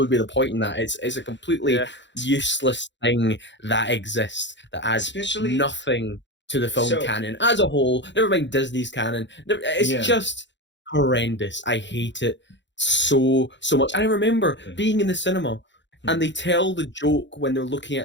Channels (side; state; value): right; late; 0.53 ms